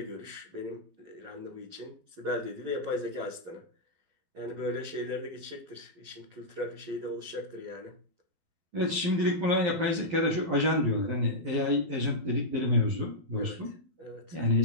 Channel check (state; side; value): late; left; 12 ms